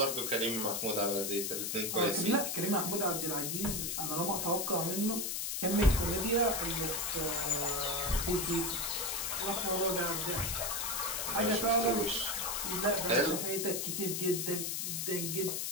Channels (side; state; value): left; noise; hiss, 1 dB below the sound